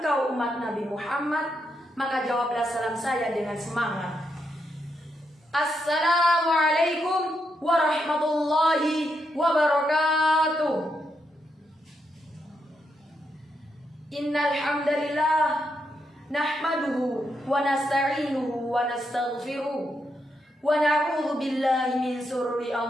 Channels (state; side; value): normal; both; correlation 0.81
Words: umat Nabi Muhammad, maka jawablah salam saya dengan semangat. Assalamualaikum warahmatullahi wabarakatuh. Innal hamdalillah nahmaduhu wa nasta'inuhu wa nastaghfiruh wa na'udzu billahi min shururi